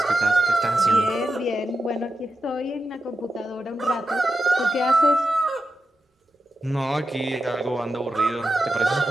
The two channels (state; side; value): normal; both; correlation 0.89